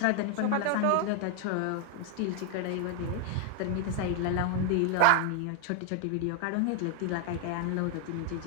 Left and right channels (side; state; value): both; different; correlation 0.00